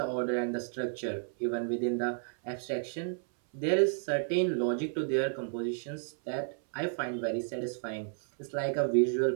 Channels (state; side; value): silent; left; 56 dB below the other